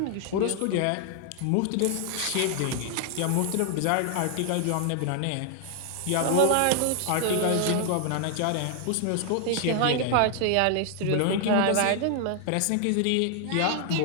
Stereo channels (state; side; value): different; both; correlation 0.00